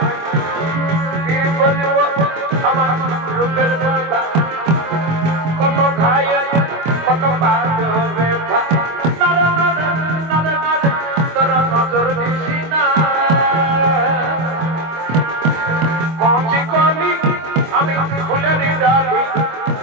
কি বলবো আমার রূপের কথা কত খাই কত বাজো ব্যথা নারে নারে নারে নারে তোরা নজর দিছি না পৌঁছি কলি আমি ফুলের ডালি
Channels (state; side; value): late; left; 25 ms